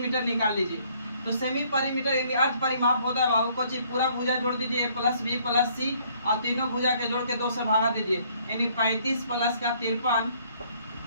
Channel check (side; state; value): both; inverted; correlation -0.63